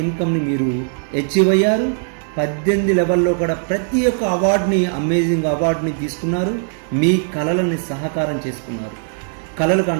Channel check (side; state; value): left; silent; digital silence